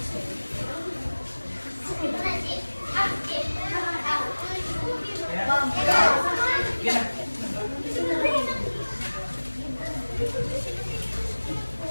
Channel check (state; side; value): inverted; both; correlation -1.00